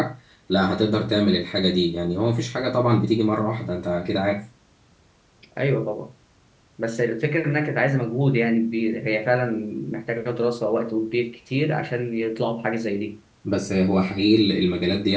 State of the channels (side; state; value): both; identical; correlation 1.00